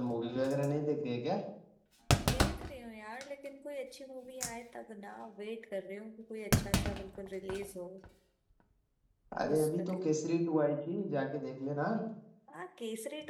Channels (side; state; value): both; identical; correlation 1.00